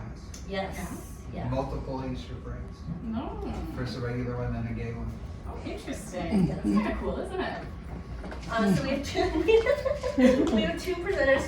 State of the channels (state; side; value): identical; both; correlation 1.00